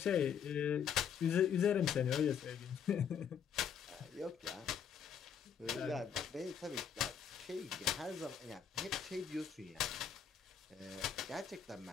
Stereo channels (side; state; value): right; quieter; 7.7 dB